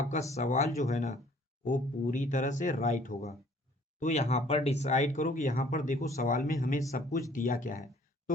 सवाल जो है ना वो पूरी तरह से राइट होगा। तो यहाँ पर डिसाइड करो कि यहाँ पर देखो सवाल में हमें सब कुछ दिया क्या है।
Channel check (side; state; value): both; normal; correlation 0.57